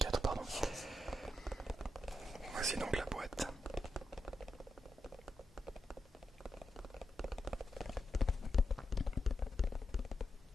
pardon. Voici donc la boîte.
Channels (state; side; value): normal; both; correlation 0.86